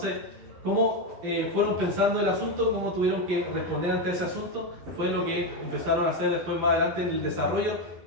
cómo fueron pensando el asunto, cómo tuvieron que responder ante ese asunto, fue lo que empezaron a hacer después más adelante en el desarrollo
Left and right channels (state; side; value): late; left; 12 ms